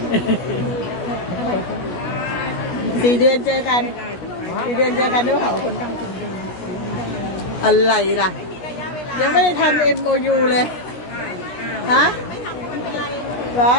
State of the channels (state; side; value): late; right; 17 ms